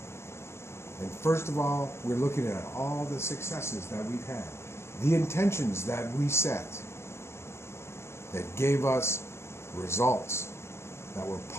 And first of all, we're looking at all the successes that we've had, the intentions that we set that gave us results that were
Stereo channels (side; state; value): right; late; 0.13 ms